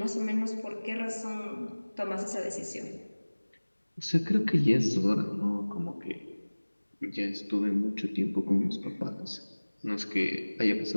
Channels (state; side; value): inverted; both; correlation -1.00